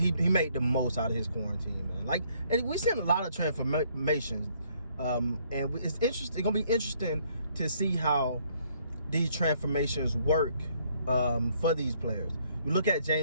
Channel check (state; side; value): inverted; both; correlation -0.66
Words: made the most out of his quarantine, man. Like, and we've seen a lot of transformations, and it's interesting. It's gonna be interesting to see how these transformations work for these players. You look at